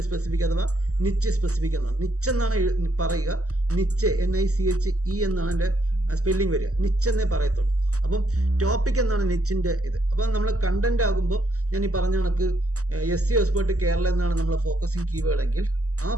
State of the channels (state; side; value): late; left; 0.66 ms